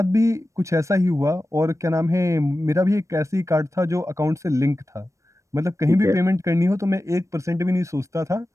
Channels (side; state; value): left; late; 0.15 ms